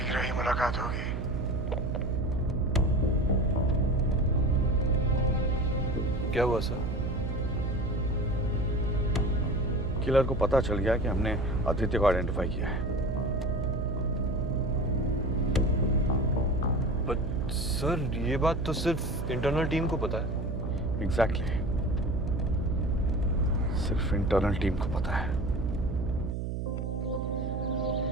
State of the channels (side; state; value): right; noise; hum, 2 dB below the sound